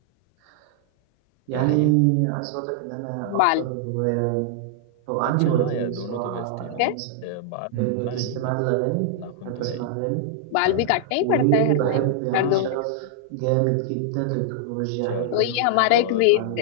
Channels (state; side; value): different; both; correlation -0.01